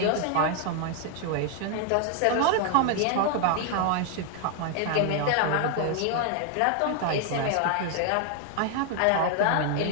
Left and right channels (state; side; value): different; both; correlation 0.01